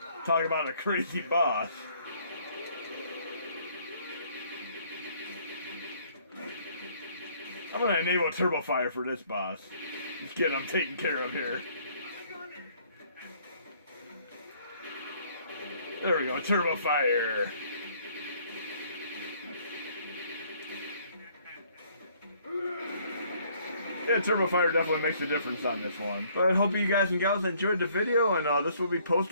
Talk about a crazy boss. I'm gonna enable Turbo Fire for this boss. Just get him taken care of here. There we go, Turbo Fire. Yeah, Turbo Fire definitely makes a difference on this one. But I hope you guys and gals enjoyed the video, and this will be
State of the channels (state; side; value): inverted; both; correlation -0.62